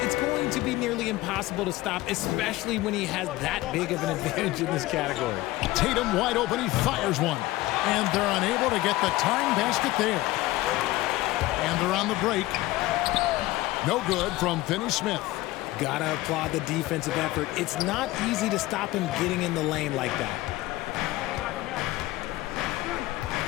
it's going to be nearly impossible to stop, especially when he has that big of an advantage in this category. Tatum wide open, he fires one. And they're unable to get the tying basket there. And they're on the break. No good from Finney-Smith. Gotta applaud the defensive effort. It's not easy to stop him getting in the lane like that.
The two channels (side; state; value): right; quieter; 18.1 dB